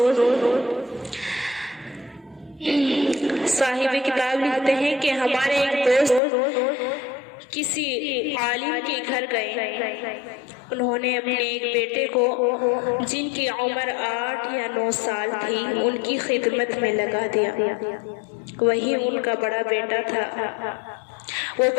صاحب کتاب لکھتے ہیں کہ ہمارے ایک دوست کسی عالم کے گھر گئے، انہوں نے اپنے ایک بیٹے کو جن کی عمر 8 یا 9 سال تھی ان کی خدمت میں لگا دیا، وہی ان کا بڑا بیٹا تھا۔ وہ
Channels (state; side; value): drops out; right; at 6.2 s